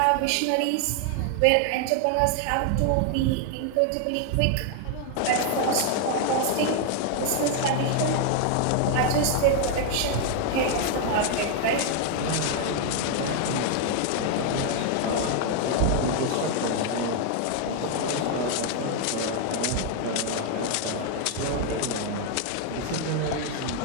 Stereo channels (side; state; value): both; different; correlation 0.00